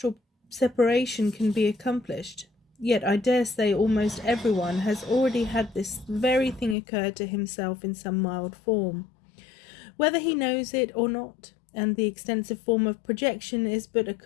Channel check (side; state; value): right; drops out; at 6.8 s